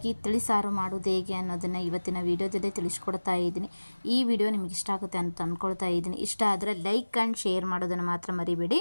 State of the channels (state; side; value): inverted; both; correlation -1.00